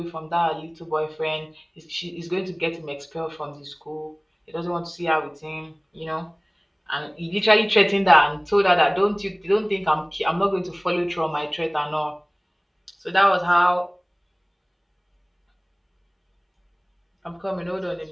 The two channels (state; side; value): identical; both; correlation 1.00